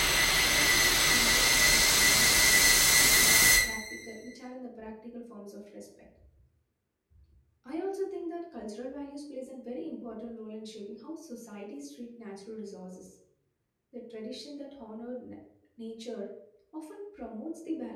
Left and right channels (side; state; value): both; identical; correlation 1.00